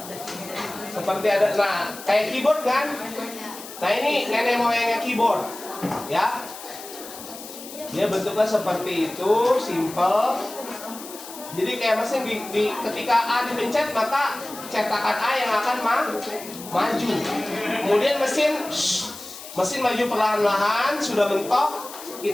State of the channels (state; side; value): noise; left; hiss, 14 dB below the sound